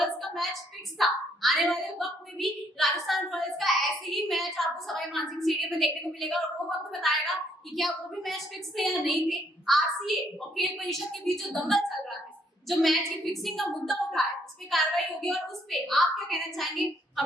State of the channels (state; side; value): normal; both; correlation 0.69